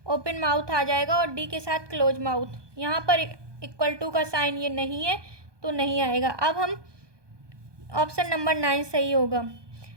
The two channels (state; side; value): late; left; 1.2 ms